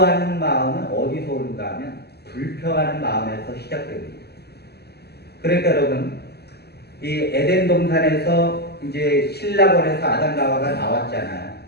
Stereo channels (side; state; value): right; late; 0.47 ms